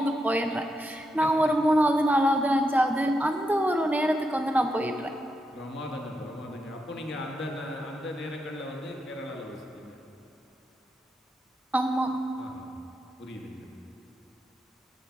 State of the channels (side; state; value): both; normal; correlation 0.84